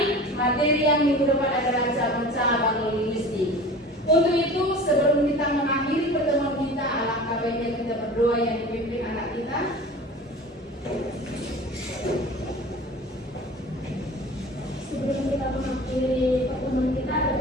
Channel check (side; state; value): both; normal; correlation 0.39